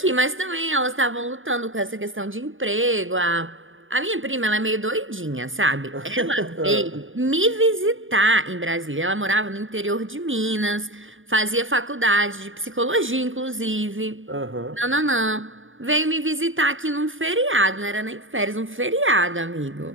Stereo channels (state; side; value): late; left; 0.58 ms